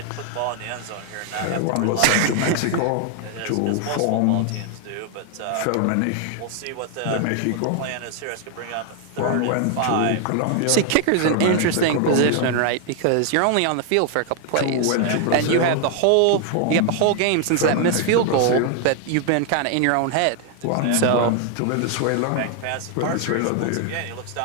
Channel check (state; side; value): different; both; correlation 0.00